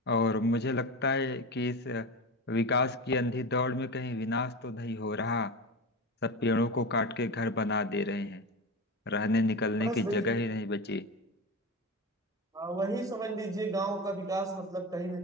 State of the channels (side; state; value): both; normal; correlation 0.24